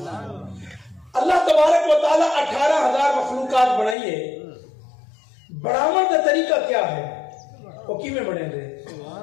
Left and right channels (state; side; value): drops out; right; at 4.0 s